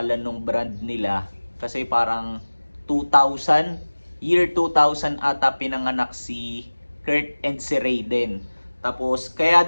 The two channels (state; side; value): inverted; both; correlation -1.00